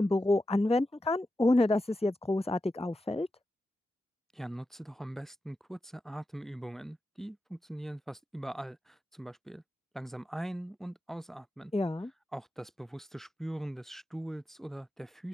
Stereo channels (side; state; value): both; normal; correlation 0.90